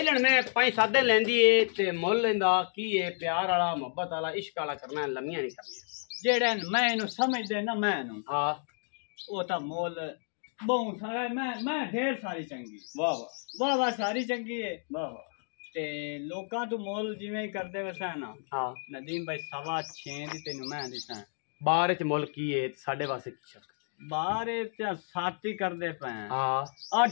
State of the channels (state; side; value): silent; right; 57 dB below the other